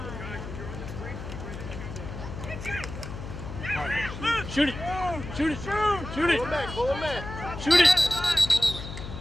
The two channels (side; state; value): left; noise; hum, 9 dB below the sound